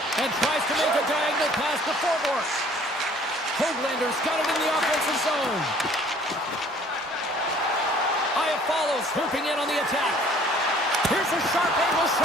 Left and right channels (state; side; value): normal; both; correlation 0.55